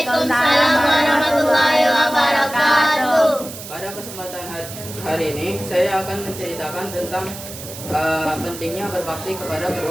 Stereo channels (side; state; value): right; noise; hiss, 12 dB below the sound